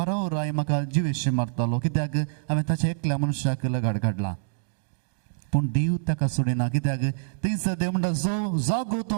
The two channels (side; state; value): left; silent; digital silence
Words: राय म्हाका जिवेशी मारतलो कित्याक हांवें ताच्या एकल्या मनशाक लगाड काडला पूण देव ताका सोडिना कित्याक थंयसर देव म्हणटा जो जागो